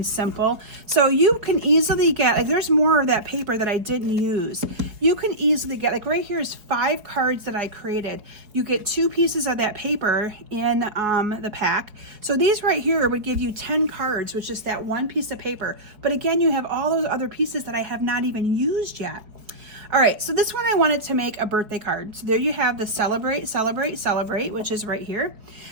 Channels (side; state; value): left; late; 4.6 ms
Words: simple. So you can easily get, like there's more of that paper that I didn't use. You can easily get, like right here is 5 cards that I created. You get 2 pieces of that paper in the pack. So these right here would give you 10 cards with just that one piece of paper. But again, you have all those other pieces that I have not even used yet. All right, so this one I wanted to make a birthday card. So there you have the Celebrate, Celebrate, Celebrate, which is right here.